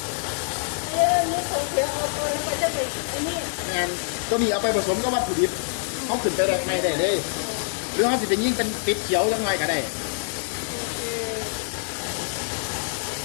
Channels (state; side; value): silent; right; digital silence